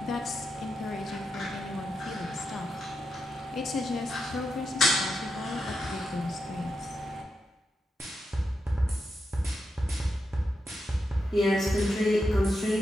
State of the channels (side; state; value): both; normal; correlation 0.86